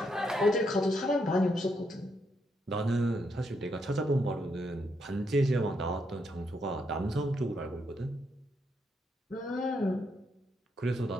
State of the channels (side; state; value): both; normal; correlation 0.78